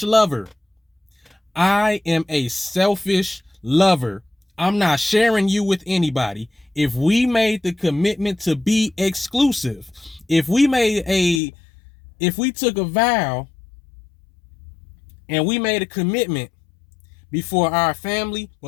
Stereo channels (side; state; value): right; drops out; at 11.4 s